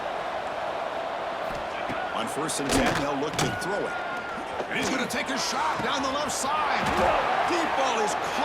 On 1st and 10, they'll look to throw it. And he's going to take a shot down the left side. Deep ball is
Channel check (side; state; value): both; identical; correlation 1.00